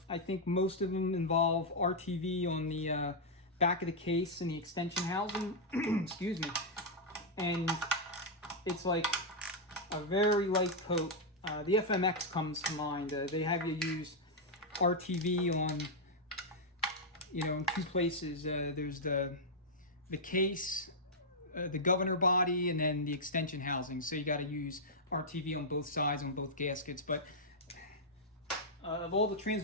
think most of them involve RTV on the back of the case and the extension housing. Excuse me. And it's like a very light coat. The FMX comes to mind. They have you use RTV on, you know, in 2 places. There's the case, the governor body, and then the extension housing. So you got to use RTV on both sides, on both gaskets. But of all the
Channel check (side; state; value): both; normal; correlation -0.05